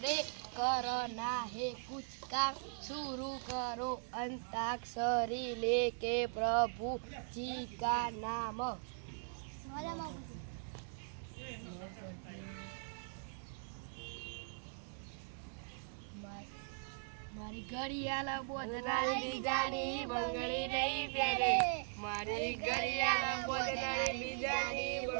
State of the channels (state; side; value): silent; left; digital silence